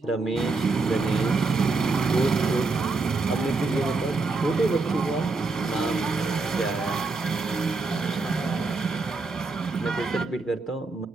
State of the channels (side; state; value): left; quieter; 3.8 dB